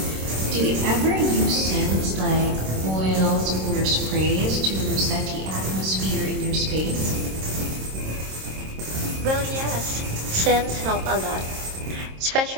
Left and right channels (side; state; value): left; late; 26 ms